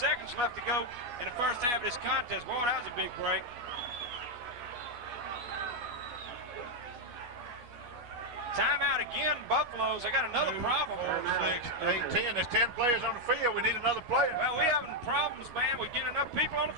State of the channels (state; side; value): late; left; 12 ms